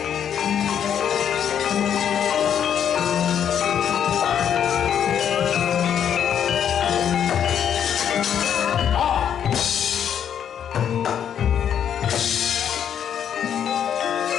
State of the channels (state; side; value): quieter; right; 8.9 dB